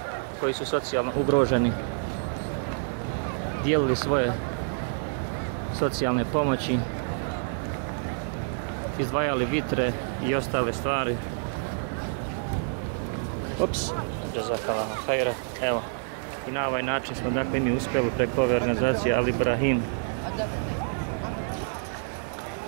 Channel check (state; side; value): silent; left; digital silence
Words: koji su socijalno ugroženi, dijelili svoje socijalne pomoći, izdvajali vitre i ostale stvari. Ups, jazakallahu hajra. Evo, i na ovaj način smo dakle mi uspjeli preko ove organizacije Al Ibrahim